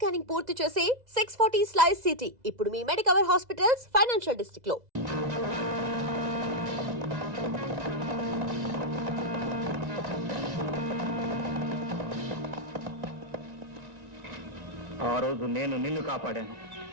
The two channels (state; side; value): late; left; 2.0 ms